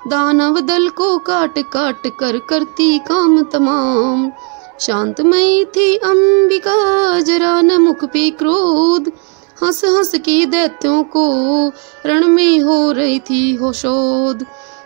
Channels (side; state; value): left; quieter; 38.9 dB